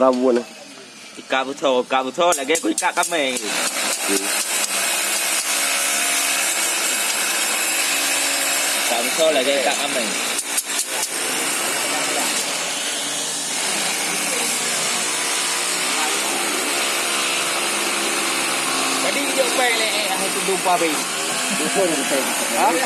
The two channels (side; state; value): both; identical; correlation 1.00